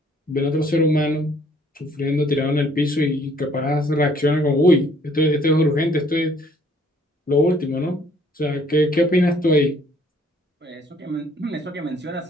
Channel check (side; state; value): both; normal; correlation 0.61